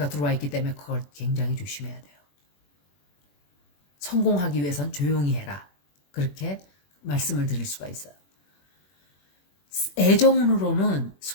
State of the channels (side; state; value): right; late; 21 ms